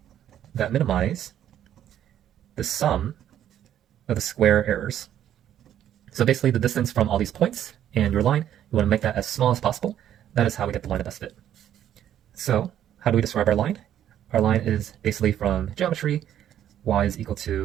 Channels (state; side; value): quieter; left; 10.8 dB